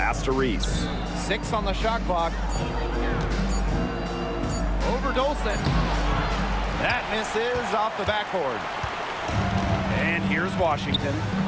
to Reese. 6 on the shot clock. Over Dolson. That misses off the backboard. And here's Washington.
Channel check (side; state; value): both; identical; correlation 1.00